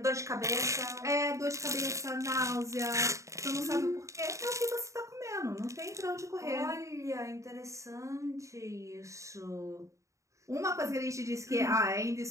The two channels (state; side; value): late; left; 0.15 ms